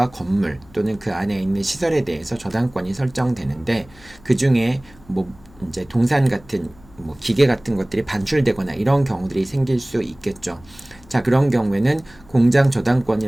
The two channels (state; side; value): noise; left; hum, 25 dB below the sound